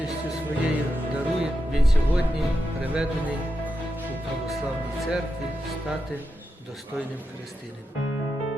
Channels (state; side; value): normal; both; correlation 0.87